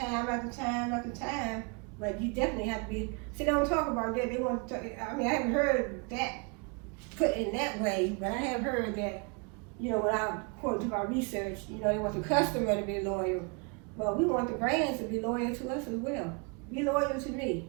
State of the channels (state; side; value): quieter; left; 32.0 dB